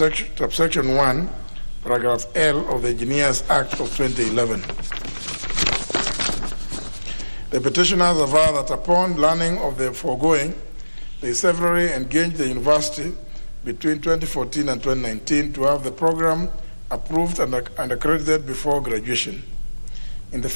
1, paragraph L of the Engineers Act of 2011. The petitioners aver that upon learning of the foregoing, they severally engaged the university between 2014 and 2019 to have the program approved and accredited before graduation. In the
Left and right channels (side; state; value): both; inverted; correlation -1.00